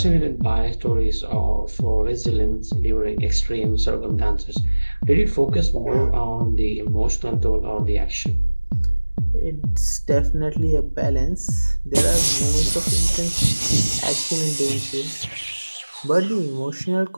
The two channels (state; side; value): inverted; both; correlation -1.00